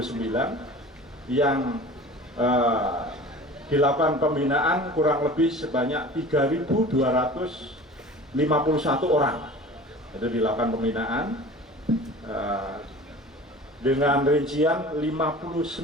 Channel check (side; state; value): both; normal; correlation 0.40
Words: yang dilakukan pembinaan kurang lebih sebanyak 3.251 orang. Itu dilakukan pembinaan dengan rincian